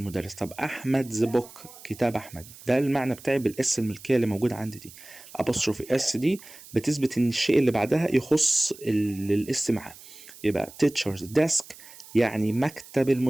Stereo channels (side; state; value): right; noise; hiss, 19 dB below the sound